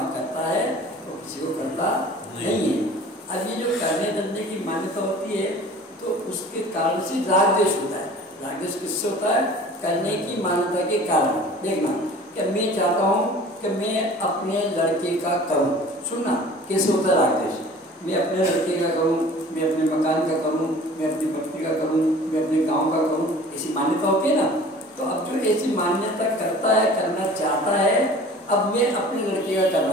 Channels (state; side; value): normal; both; correlation 0.45